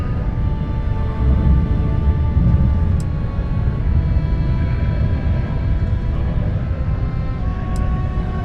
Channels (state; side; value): identical; both; correlation 1.00